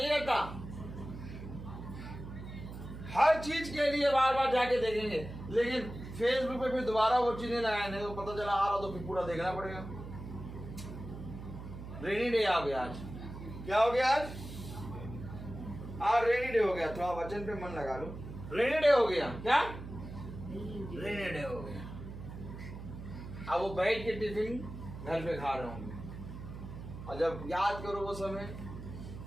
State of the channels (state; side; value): noise; right; hum, 11 dB below the sound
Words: रहता। हर चीज के लिए बार बार जाके देखेंगे, लेकिन फेसबुक पे फिर दोबारा वो चीजें लगाए तो पता चला आ रहा, तो फिर पूरा देखना पड़ेगा। रेनी डे आ गया आज, क्या हो गया आज रेनी डे हो गया। थोड़ा वचन पे मन लगा लो, रेनी डे हो गया। क्या? रेनी डे हो गया। अब वो बैठ के टिफिन घर पे खा रहे होंगे, और जब याद करो वो समय,